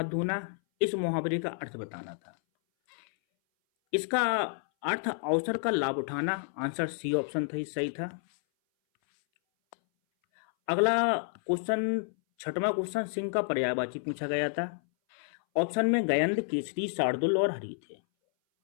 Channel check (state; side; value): silent; right; 58 dB below the other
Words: धोना, इस मुहावरे का अर्थ बताना था। इसका अर्थ अवसर का लाभ उठाना। आंसर सी ऑप्शन था, सही था। अगला क्वेश्चन, छठवां क्वेश्चन, सिंह का पर्यायवाची पूछा गया था। ऑप्शन में गयंद, केसरी, शार्दुल और हरि थे।